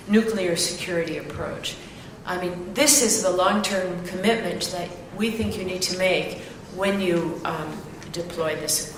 nuclear security approach. I mean, this is the long-term commitment that we think you need to make when you deploy this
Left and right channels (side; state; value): both; identical; correlation 1.00